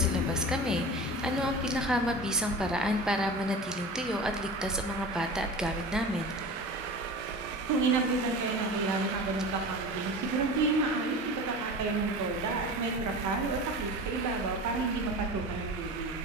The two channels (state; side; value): normal; both; correlation 0.33